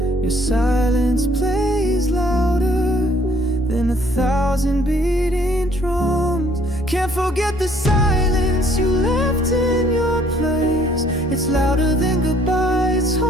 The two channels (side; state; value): both; normal; correlation 0.62